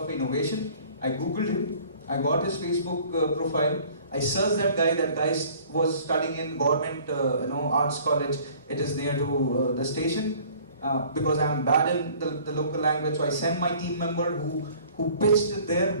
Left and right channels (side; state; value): both; inverted; correlation -0.52